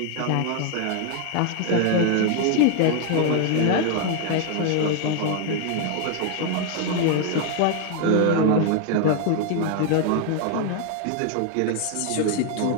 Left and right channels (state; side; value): different; both; correlation 0.00